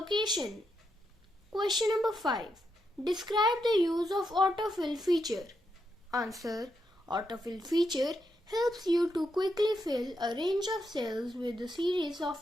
Question number 5. Describe the use of autofill feature. Answer. Autofill feature helps you to quickly fill a range of cells with a series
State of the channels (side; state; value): both; normal; correlation 0.82